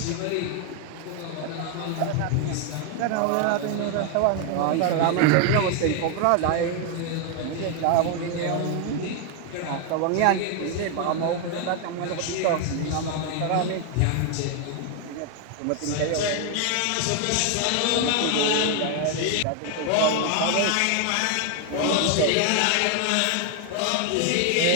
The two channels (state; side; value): different; both; correlation 0.00